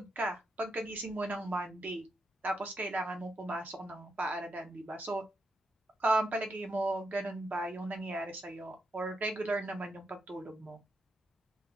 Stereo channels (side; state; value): both; normal; correlation 0.82